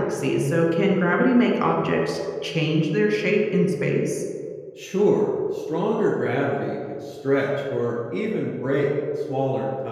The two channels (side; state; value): both; identical; correlation 1.00